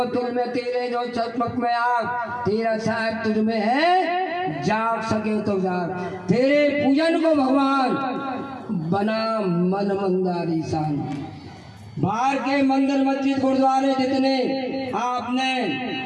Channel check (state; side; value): identical; both; correlation 1.00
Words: तुल में तेरे जो चकमक में आग, तेरा साहेब तुझ में है, जाग सके तो जाग। तेरे पूजन को भगवान बना मन मंदारी सान। बाहर के मंदिर मस्जिद गुरुद्वारे जितने आपने